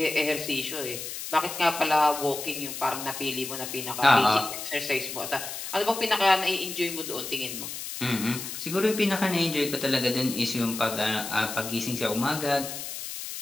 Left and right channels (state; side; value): noise; left; hiss, 7 dB below the sound